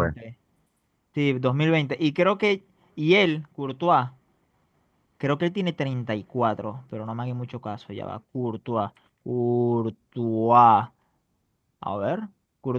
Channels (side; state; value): both; identical; correlation 1.00